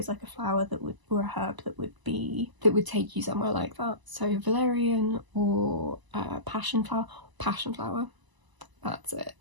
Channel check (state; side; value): late; left; 1.0 ms